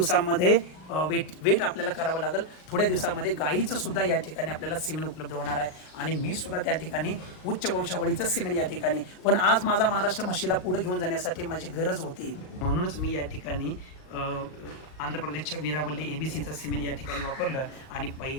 वेट आपल्याला करावं लागेल. थोड्या दिवसामध्ये गाईचं सुद्धा या ठिकाणी आपल्याला सिमेंट उपलब्ध होणार आहे आणि मी सुद्धा त्या ठिकाणी उच्च वंशावळीचं सिमेंट या ठिकाणी. पण आज माझा महाराष्ट्र म्हशीला पुढे घेऊन जाण्यासाठी माझी गरज होती, म्हणूनच मी या ठिकाणी आंध्र प्रदेशच्या वीरावल्ली ABCचं सिमेंट या ठिकाणी वापरलं आणि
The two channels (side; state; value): right; late; 38 ms